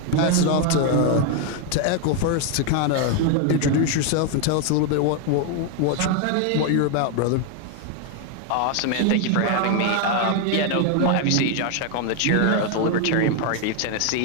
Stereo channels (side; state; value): both; different; correlation 0.01